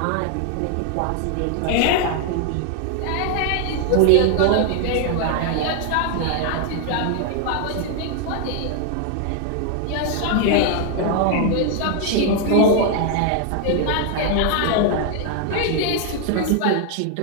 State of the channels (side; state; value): both; different; correlation 0.00